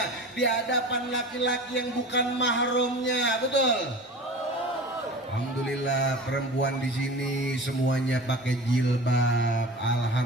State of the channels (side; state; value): both; normal; correlation 0.36